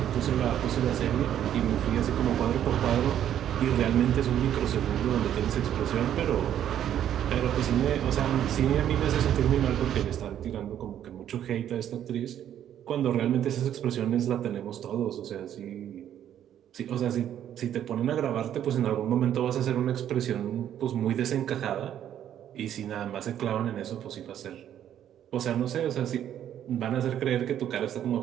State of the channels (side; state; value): left; quieter; 10.5 dB